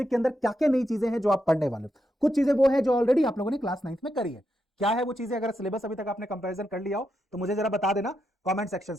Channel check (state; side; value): normal; both; correlation 0.83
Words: के अंदर क्या क्या नई चीजें हैं जो आप पढ़ने वाले हो। कुछ चीजें वो है जो ऑलरेडी आप लोगों ने क्लास 9th में करी है। क्या है वो चीजें? अगर सिलेबस अभी तक आपने कंपैरिजन कर लिया हो तो मुझे जरा बता देना कमेंट